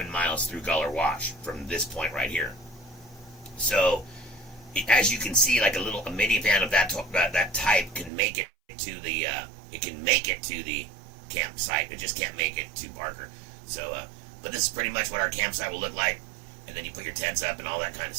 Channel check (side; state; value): left; drops out; at 8.1 s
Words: miles through Guller Wash from this point right here. So, as you can see, like a minivan of that type can make it to the campsite. It just can't make it to Barker. So, but this is pretty much what our campsite will look like. And then you put your tents up and all that kind of